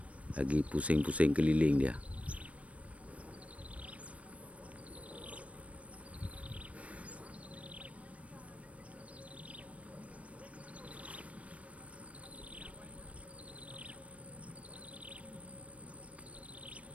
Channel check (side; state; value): left; late; 0.064 ms